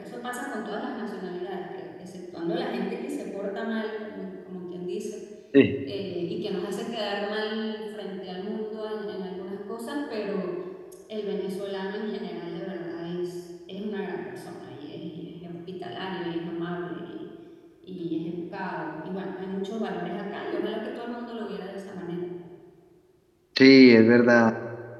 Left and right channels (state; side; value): identical; both; correlation 1.00